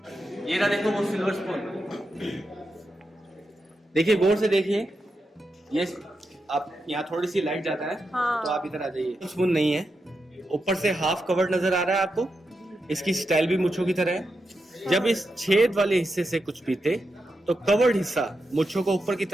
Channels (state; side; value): normal; both; correlation 0.87